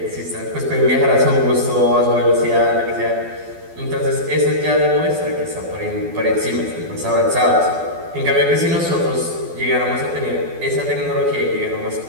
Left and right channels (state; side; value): late; left; 12 ms